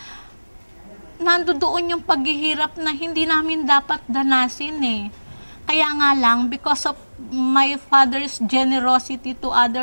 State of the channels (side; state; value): both; inverted; correlation -1.00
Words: nandoon yung paghihirap na hindi namin dapat danasin eh. Kaya nga lang, because of my father's generosity to